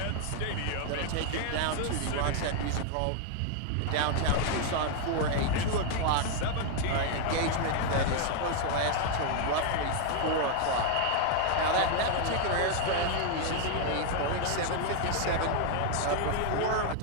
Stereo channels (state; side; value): different; both; correlation 0.00